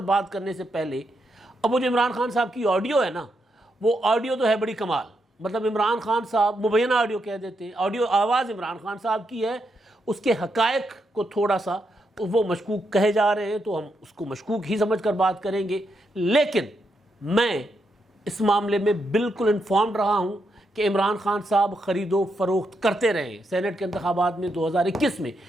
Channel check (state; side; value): normal; both; correlation 0.81